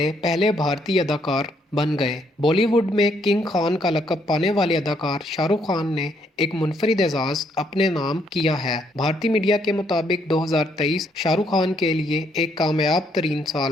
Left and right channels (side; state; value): both; normal; correlation 0.71